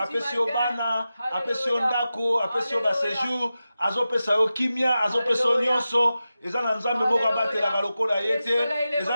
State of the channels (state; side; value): inverted; both; correlation -0.93